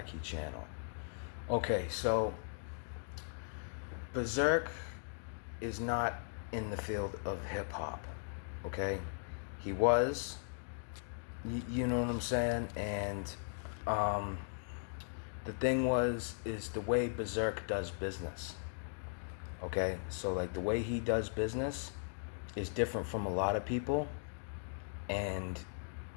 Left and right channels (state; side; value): silent; right; digital silence